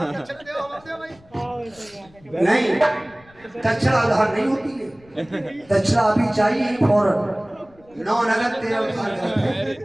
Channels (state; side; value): noise; left; rumble, 27 dB below the sound